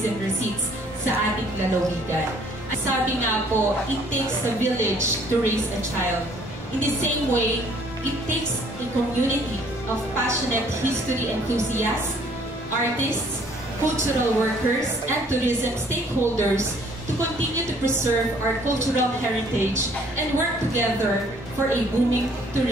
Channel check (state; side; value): normal; both; correlation 0.60